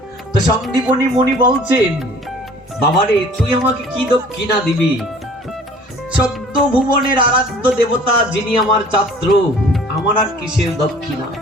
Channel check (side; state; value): both; normal; correlation 0.51